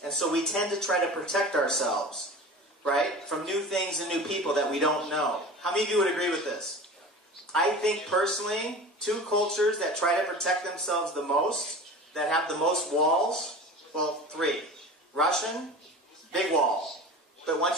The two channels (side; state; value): both; normal; correlation 0.36